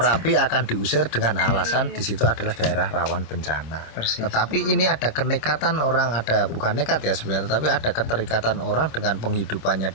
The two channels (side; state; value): right; late; 26 ms